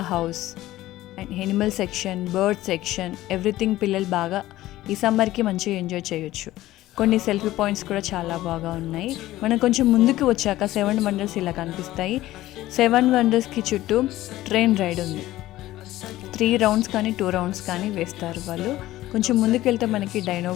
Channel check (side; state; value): right; quieter; 15.8 dB